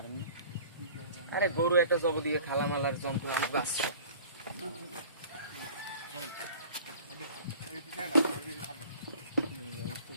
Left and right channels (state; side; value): inverted; both; correlation -0.46